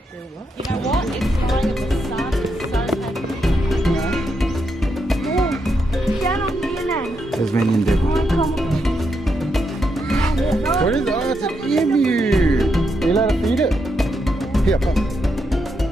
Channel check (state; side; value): normal; both; correlation 0.81